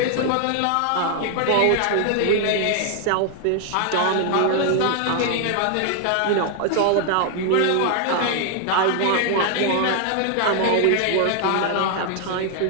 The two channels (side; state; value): both; different; correlation 0.00